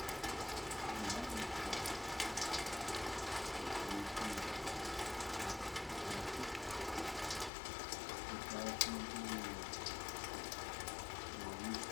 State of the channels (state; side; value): drops out; right; at 7.5 s